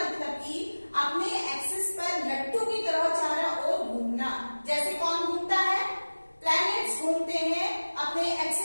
कि अपने एक्सिस पर लट्टू की तरह चारों ओर घूमना। जैसे कौन घूमता है, प्लैनेट्स घूमते हैं अपने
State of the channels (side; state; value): both; inverted; correlation -1.00